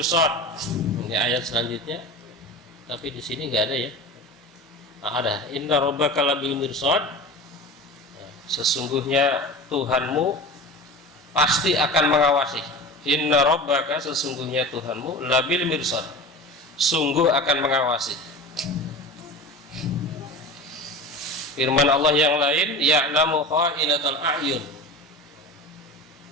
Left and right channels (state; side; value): normal; both; correlation 0.32